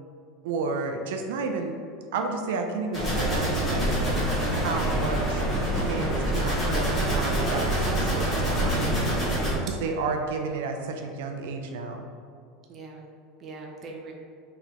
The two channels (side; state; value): both; normal; correlation 0.25